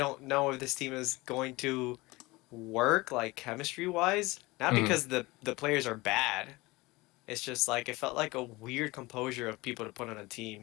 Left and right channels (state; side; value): quieter; right; 22.1 dB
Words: know if this team is going to work like chemistry wise. Not Mhm. because the players are bad. It's just like it felt like a weird composure of people to put on a